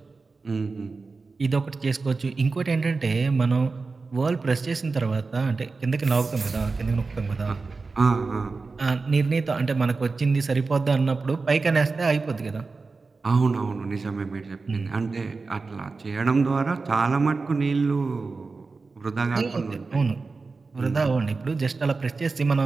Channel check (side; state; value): left; quieter; 4.1 dB